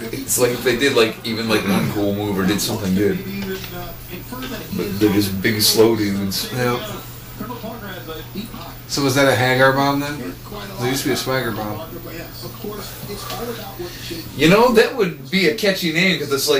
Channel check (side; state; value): both; identical; correlation 1.00